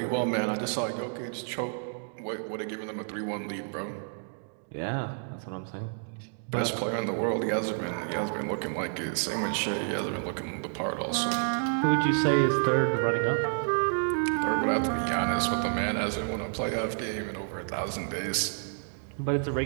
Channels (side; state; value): left; silent; digital silence